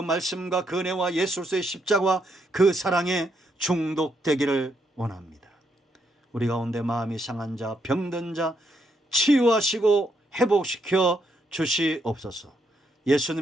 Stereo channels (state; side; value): normal; both; correlation 0.77